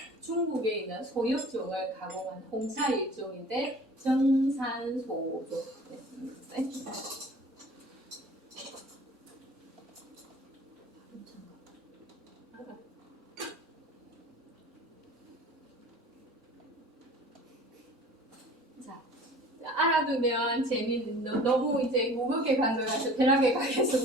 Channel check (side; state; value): both; normal; correlation 0.45